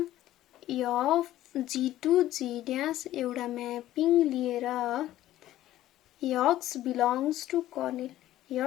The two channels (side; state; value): right; quieter; 14.1 dB